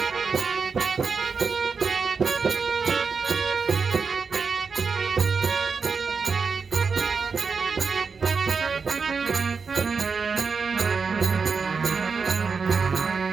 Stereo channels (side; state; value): left; quieter; 5.2 dB